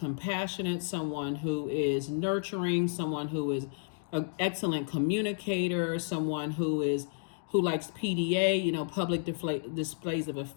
someone who is nurturing, someone who is an excellent communicator, someone who likes PDA, public displays of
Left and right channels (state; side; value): silent; right; digital silence